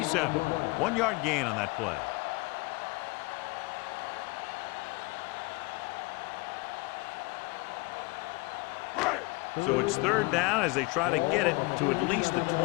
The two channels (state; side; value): quieter; right; 24.8 dB